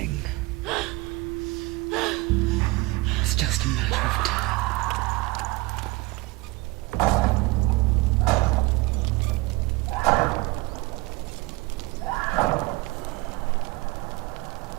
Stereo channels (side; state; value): left; quieter; 22.4 dB